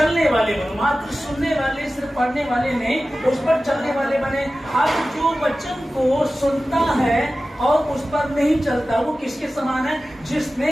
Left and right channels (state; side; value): normal; both; correlation 0.95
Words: वाले बनो। मात्र सुनने वाले, सिर्फ पढ़ने वाले नहीं, उस पर चलने वाले बने। अब जो वचन को सुनता है और उस पर नहीं चलता, वो किसके समान है?